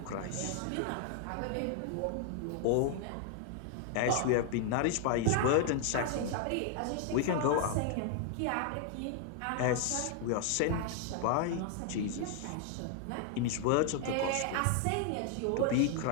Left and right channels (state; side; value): different; both; correlation 0.00